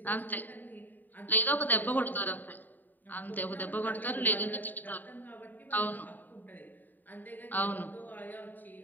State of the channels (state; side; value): late; right; 0.088 ms